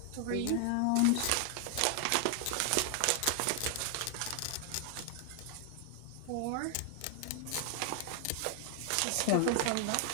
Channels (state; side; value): different; both; correlation 0.00